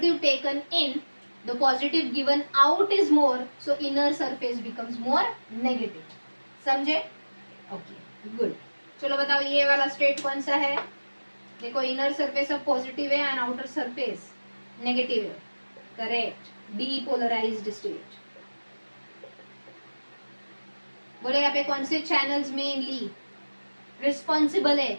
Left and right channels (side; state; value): both; inverted; correlation -1.00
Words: taken in, the positive given out is more, so inner surface becomes more negative. समझे? Okay, good. चलो बताओ ये वाला स्टेट कौन सा है? देखो, इनर सरफेस अब पॉजिटिव है एंड आउटर सरफेस नेगेटिव है. करेक्ट. Depolarized state. बोले यहाँ पे कौन से चैनल्स मेनली रिस्पॉन्सिबल है